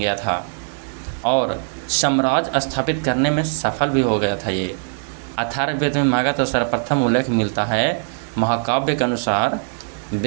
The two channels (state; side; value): silent; left; 65 dB below the other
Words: था और साम्राज्य स्थापित करने में सफल भी हो गया था। ये अथर्ववेद में मगध का सर्वप्रथम उल्लेख मिलता है। महाकाव्य के अनुसार